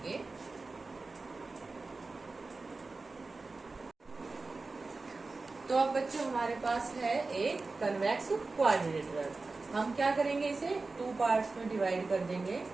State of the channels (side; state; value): left; quieter; 3.7 dB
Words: तो अब बच्चों हमारे पास है एक कन्वेक्स क्वाड्रिलेटरल। हम क्या करेंगे, इसे 2 पार्ट्स में डिवाइड कर देंगे,